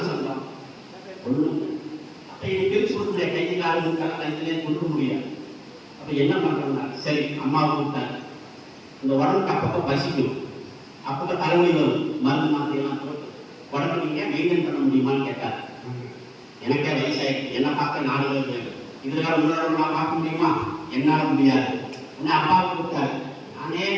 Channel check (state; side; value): identical; both; correlation 1.00